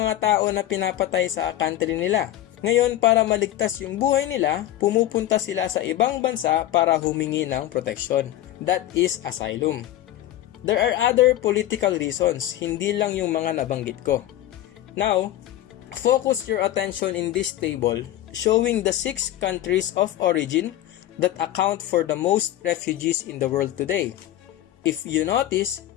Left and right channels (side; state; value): right; quieter; 13.5 dB